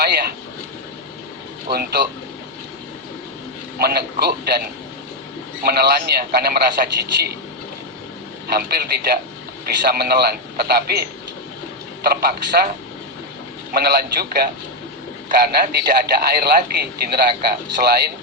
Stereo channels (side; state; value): both; normal; correlation 0.04